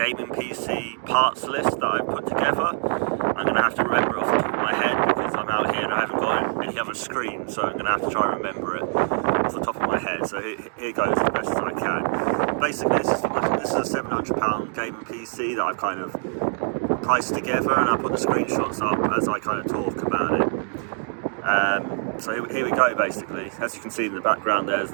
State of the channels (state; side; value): silent; left; 59 dB below the other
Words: PC parts list that I've put together. I'm going to have to remember it off the top of my head because I'm out here and I haven't got any other screen, so I'm going to have to try and remember it off the top of my head. So here goes as best as I can. Basically this is a £700 gaming PC that I've kind of priced together, and I put the screenshots up as I kind of talk about it. So here we go. Basically, as you can see in the background, there's